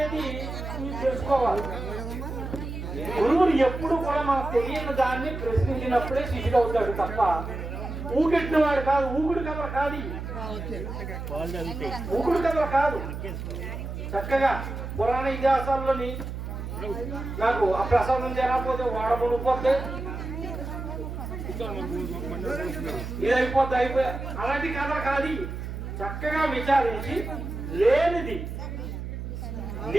తెలుసుకోవాలి. గురువుని ఎప్పుడు కూడా మనకు తెలియని దాన్ని ప్రశ్నించినప్పుడే శిష్యుడు అవుతాడు తప్ప ఊకెట్టిన వాడు కాదు. ఊగుడు కథలు కాదు, ఊగుడు కథలు కాదు. చక్కగా పురాణ ఇతిహాసాల్లోని నాకు ఆ ప్రసాదం చేరకపోతే వాడమునిపోతే ఇది అయిపోయా అలాంటి కథలు కాదు. చక్కగా విచారించి లేదని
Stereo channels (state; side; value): noise; right; hum, 6 dB below the sound